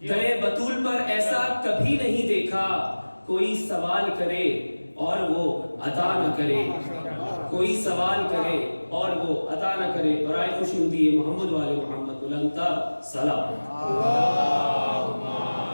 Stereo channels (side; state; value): both; inverted; correlation -1.00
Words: در بطول پر ایسا کبھی نہیں دیکھا، کوئی سوال کرے اور وہ عطا نہ کرے، کوئی سوال کرے اور وہ عطا نہ کرے. برائے خوشنودی محمد والے محمد بلند تر سلام. اللہم